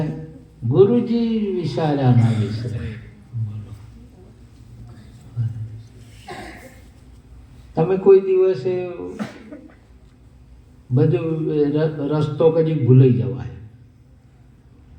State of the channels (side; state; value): both; identical; correlation 1.00